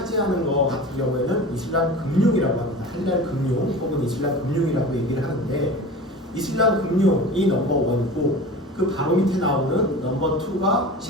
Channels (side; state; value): both; normal; correlation 0.35